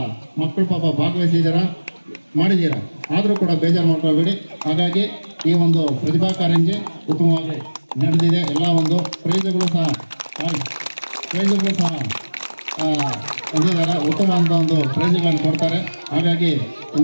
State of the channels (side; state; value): both; inverted; correlation -1.00